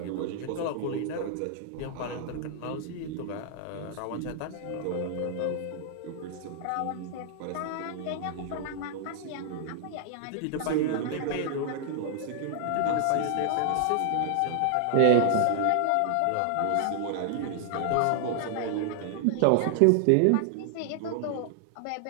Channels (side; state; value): both; different; correlation 0.00